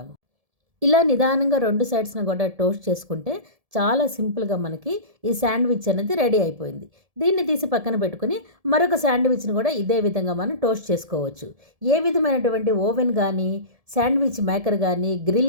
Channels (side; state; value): left; late; 1.7 ms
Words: ఇలా నిదానంగా 2 సైడ్స్ని కూడా టోస్ట్ చేసుకుంటే చాలా సింపుల్గా మనకి ఈ శాండ్విచ్ అనేది రెడీ అయిపోయింది. దీన్ని తీసి పక్కన పెట్టుకుని మరొక శాండ్విచ్ని కూడా ఇదే విధంగా మనం టోస్ట్ చేసుకోవచ్చు. ఏ విధమైనటువంటి ఓవెన్ కానీ శాండ్విచ్ మేకర్ కానీ